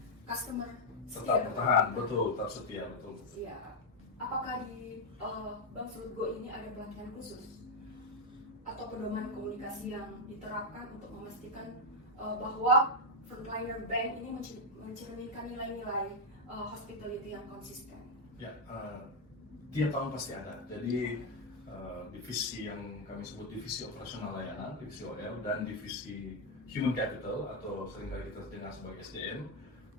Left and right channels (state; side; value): normal; both; correlation 0.01